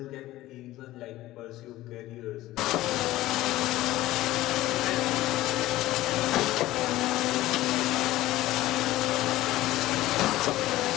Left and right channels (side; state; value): right; quieter; 16.3 dB